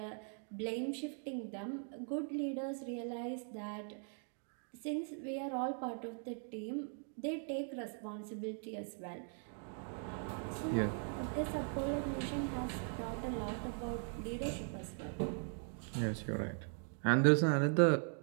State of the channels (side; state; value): left; silent; 51 dB below the other